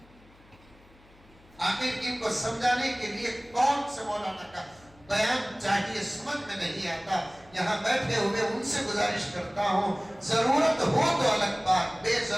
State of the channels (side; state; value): left; noise; hum, 27 dB below the sound